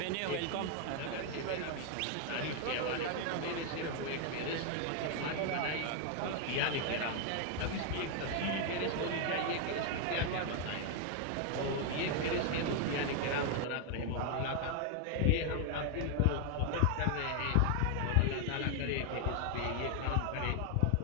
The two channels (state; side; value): different; both; correlation 0.00